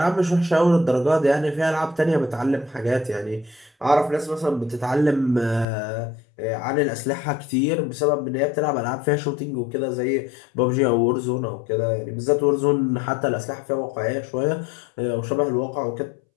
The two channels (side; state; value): right; drops out; at 5.7 s